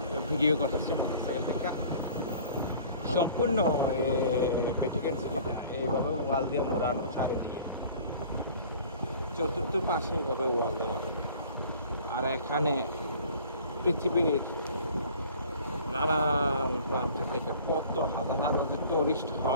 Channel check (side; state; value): both; inverted; correlation -0.48